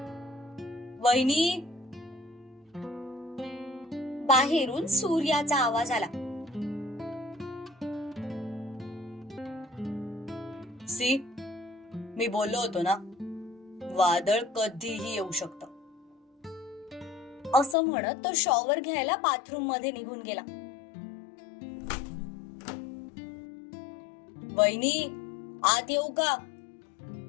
वहिनी, बाहेरून सूर्याचा आवाज आला. सी, मी बोललो होतो ना, वादळ कधीही येऊ शकतं. असं म्हणत तो शॉवर घ्यायला बाथरूम मध्ये निघून गेला. वहिनी, आत येऊ का?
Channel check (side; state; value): right; drops out; at 17.8 s